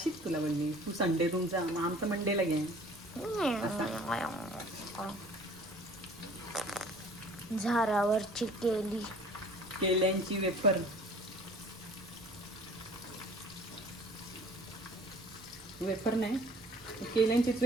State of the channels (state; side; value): noise; right; rumble, 28 dB below the sound